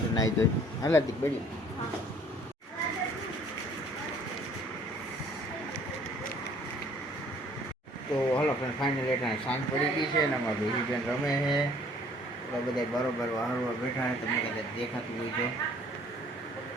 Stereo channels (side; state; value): both; normal; correlation 0.56